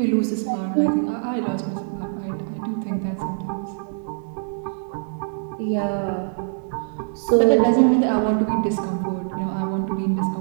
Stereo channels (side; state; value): left; silent; digital silence